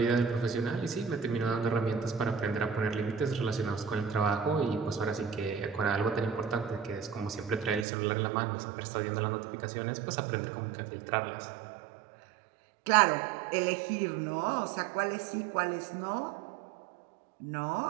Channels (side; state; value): left; drops out; at 7.9 s